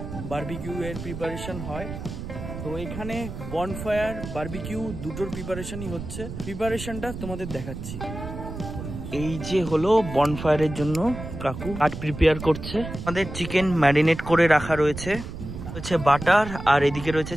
বারবিকিউ এর প্রিপারেশন হয়, তো এখানে বনফায়ার, বারবিকিউ দুটোর প্রিপারেশনই হচ্ছে। প্রিপারেশনটা তোমাদের দেখাচ্ছি। এই যে হলো বনফায়ারের জন্য কাকু কাঠ প্রিপেয়ার করছে। আমাদের চিকেন ম্যারিনেট করে রাখা রয়েছে, বাটার, আর এদিকে রয়েছে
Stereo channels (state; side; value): noise; right; rumble, 9 dB below the sound